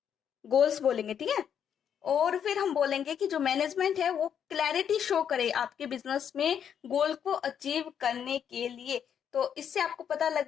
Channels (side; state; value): right; quieter; 8.4 dB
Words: गोल्स बोलेंगे। ठीक है, और फिर हम बोलेंगे कि जो मैनेजमेंट है वो क्लैरिटी शो करे आपके बिजनेस में गोल को अचीव करने के लिए। तो इससे आपको पता